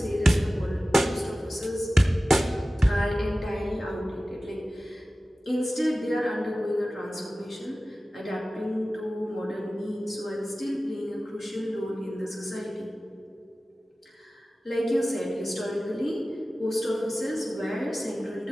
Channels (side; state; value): both; normal; correlation 0.96